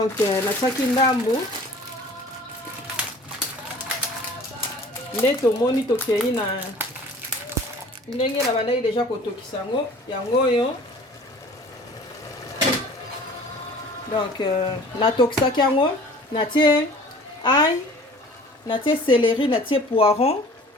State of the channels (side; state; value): both; normal; correlation 0.47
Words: natiaki ndambu nde tomoni tokei na ndenge na bandaki deja kotokisa yango oyo. Donc natokisaki yango natie ail, natie céleri, natie poiron,